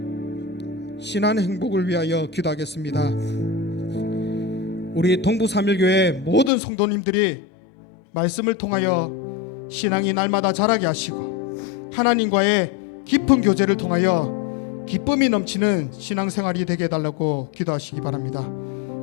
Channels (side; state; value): right; drops out; at 6.5 s